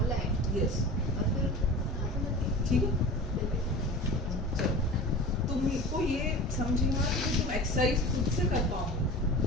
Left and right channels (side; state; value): both; normal; correlation 0.35